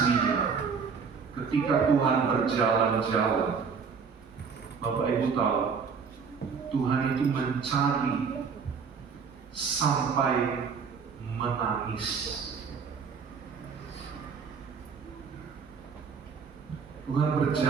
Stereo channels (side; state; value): left; quieter; 5.9 dB